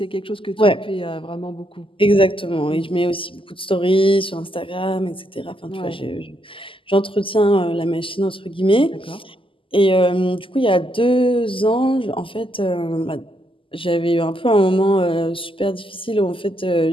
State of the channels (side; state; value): right; late; 0.25 ms